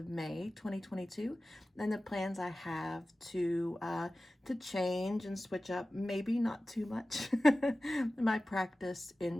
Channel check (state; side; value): normal; both; correlation 0.96